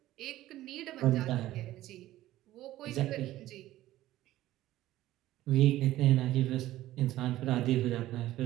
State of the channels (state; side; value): quieter; left; 15.1 dB